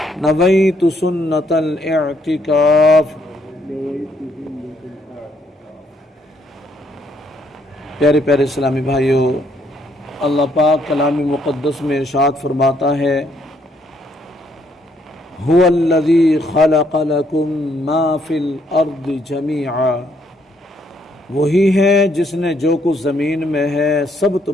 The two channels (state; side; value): normal; both; correlation 0.70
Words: نويت سنة الاعتكاف۔ پیارے پیارے اسلامی بھائیو، اللہ پاک کلام مقدس میں ارشاد فرماتا ہے هو الذی خلق لکم ما فی الارض جمیعا، وہی ہے جس نے جو کچھ زمین میں ہے سب